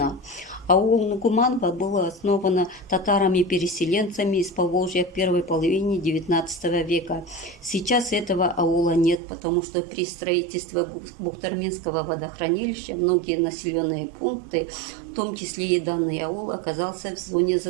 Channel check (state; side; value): drops out; left; at 9.2 s